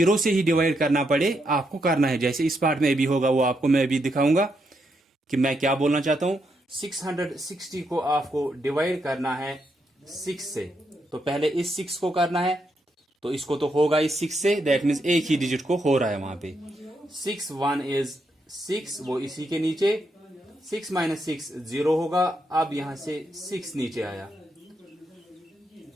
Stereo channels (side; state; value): both; normal; correlation 0.80